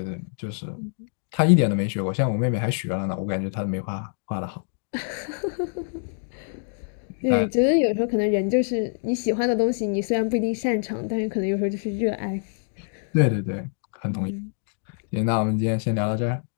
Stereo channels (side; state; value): right; silent; 61 dB below the other